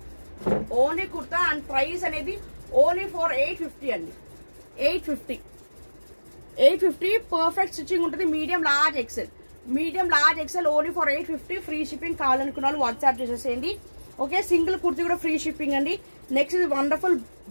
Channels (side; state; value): both; inverted; correlation -1.00